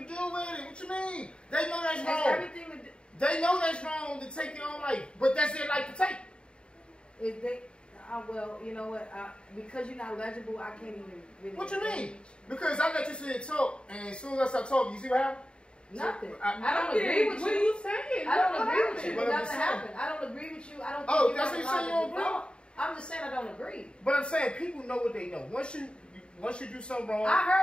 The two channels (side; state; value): right; late; 0.053 ms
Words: do with it. What you mean? They know that's wrong. Everything to do. They know that's wrong to take their own life, but that's their life to take. If they, well, you know what? Because you're not legible, I can't even really. What you mean? Because I let you sit and talk, and as soon as I start talking, you see what happened? Nothing. I don't agree with you. What are you saying? I don't agree with you. Nothing happened. I don't agree with you. I don't. Oh, that's what you say. You don't agree. I'm just saying I don't agree. But I'm saying people know what they know. Once you do something wrong. I